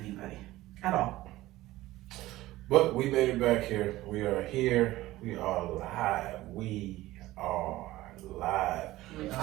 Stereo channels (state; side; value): quieter; left; 17.0 dB